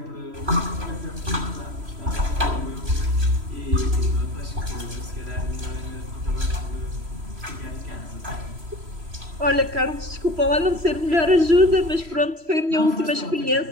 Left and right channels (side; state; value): left; late; 3.0 ms